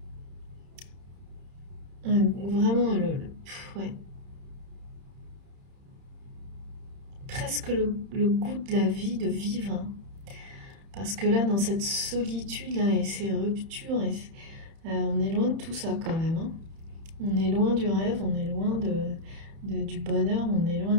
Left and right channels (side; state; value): left; late; 30 ms